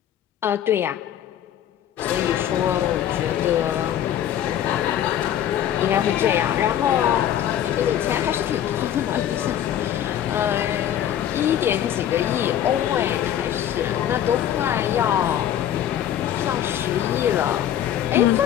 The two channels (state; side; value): quieter; right; 10.8 dB